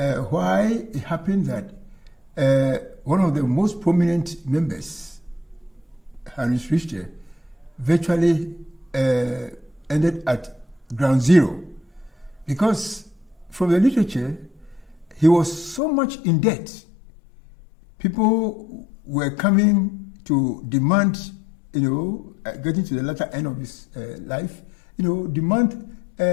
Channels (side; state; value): right; drops out; at 15.8 s